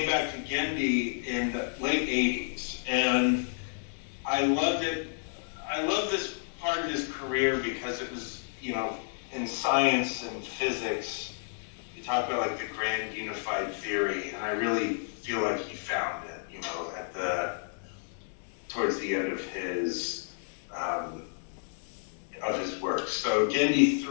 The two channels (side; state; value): right; silent; digital silence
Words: back to Gendy in the late 80s, and I loved it. I love this part of his career because it was, in science and physics, you talk about like the grand unified theory, and I really feel like he found it, towards the end of his work. So Gendy